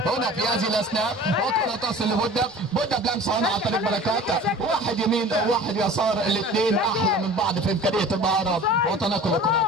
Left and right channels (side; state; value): both; normal; correlation 0.42